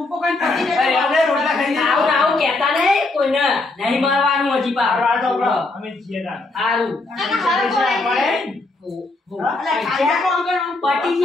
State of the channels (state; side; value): quieter; right; 3.2 dB